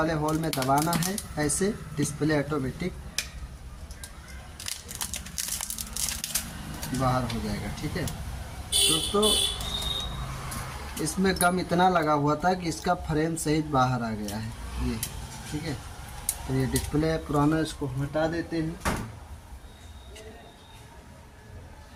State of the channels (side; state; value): both; identical; correlation 1.00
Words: होल में दबाना है, ऐसे डिस्प्ले ऑटोमेटिक बाहर हो जाएगा। ठीक है दोस्तों, इसमें गम इतना लगा हुआ था कि इसका फ्रेम सहित बाहर आ गया है ये। ठीक है, तो ये डिस्प्ले पुराना, इसको हटा देते हैं।